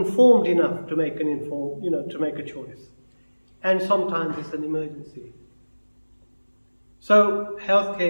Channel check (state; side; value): inverted; both; correlation -1.00